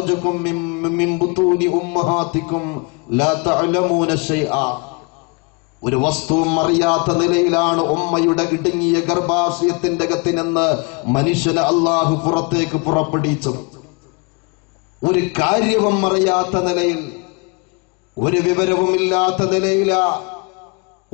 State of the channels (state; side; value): quieter; right; 30.1 dB